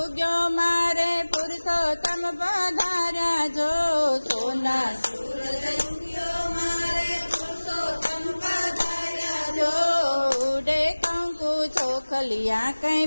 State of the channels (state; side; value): inverted; both; correlation -1.00